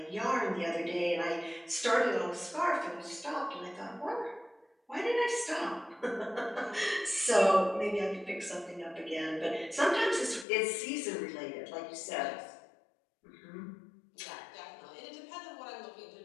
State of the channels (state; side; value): drops out; right; at 10.5 s